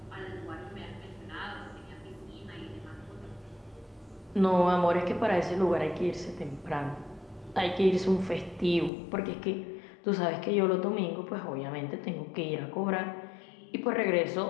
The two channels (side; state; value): right; drops out; at 8.9 s